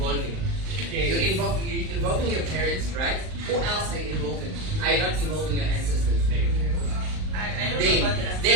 You're involving your parents, right? Who else are you involving? Are you not involving your ancestors? I don't know about that.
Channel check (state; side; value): late; left; 38 ms